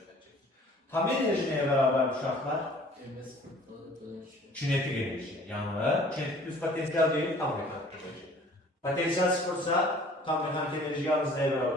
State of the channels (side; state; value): both; normal; correlation 0.52